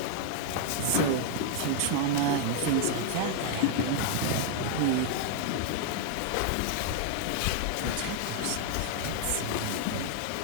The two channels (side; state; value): both; different; correlation 0.00